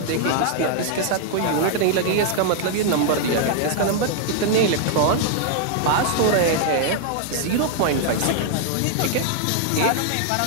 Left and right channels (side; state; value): both; different; correlation 0.00